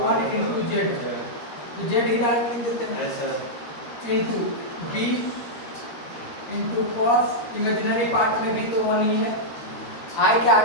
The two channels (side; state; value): right; late; 13 ms